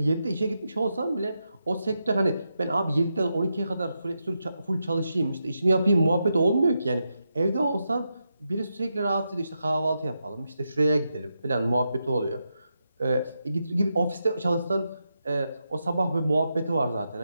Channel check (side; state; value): both; inverted; correlation -0.86